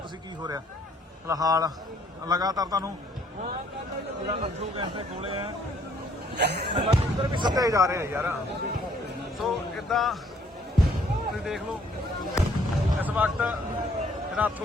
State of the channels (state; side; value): normal; both; correlation 0.63